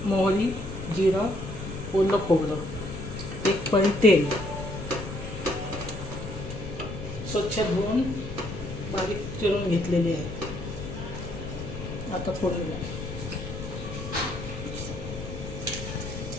मोहरी, जिरं, ओलं खोबरं, 1 पळी तेल, स्वच्छ धुवून बारीक चिरून घेतलेले आहे. आता फोडणीला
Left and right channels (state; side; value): noise; left; rumble, 8 dB below the sound